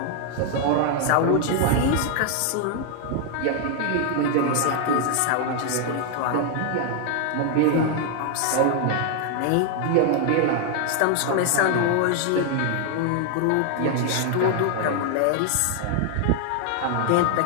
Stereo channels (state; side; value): different; both; correlation 0.00